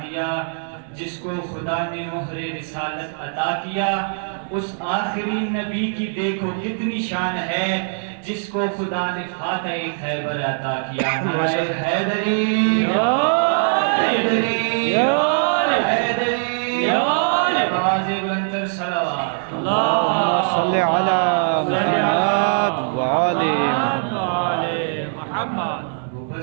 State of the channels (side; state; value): left; silent; digital silence